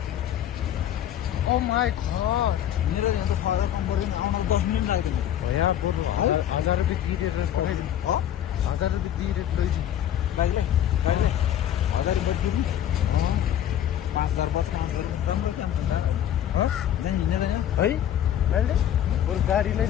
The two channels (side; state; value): right; quieter; 10.8 dB